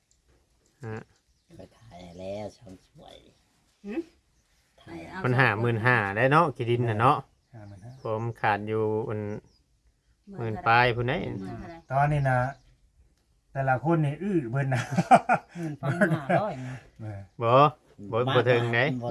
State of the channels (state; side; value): identical; both; correlation 1.00